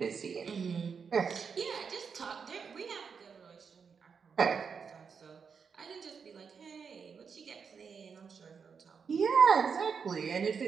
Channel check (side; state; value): left; quieter; 6.1 dB